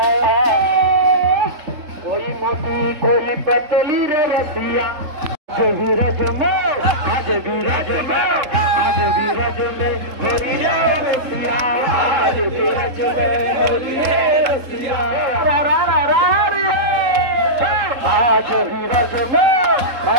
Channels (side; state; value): left; late; 3.7 ms